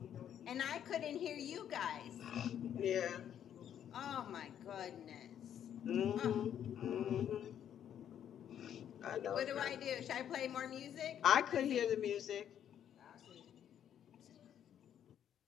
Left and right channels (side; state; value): right; quieter; 9.7 dB